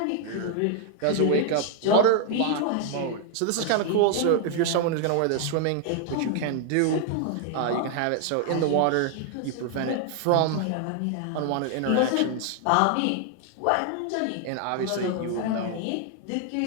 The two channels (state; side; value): different; both; correlation 0.00